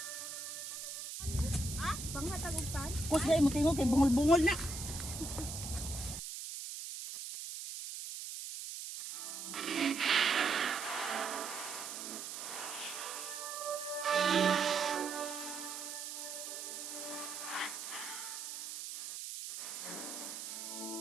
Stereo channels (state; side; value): noise; right; hiss, 7 dB below the sound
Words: Kus na mo tingog kay bungol-bungol na.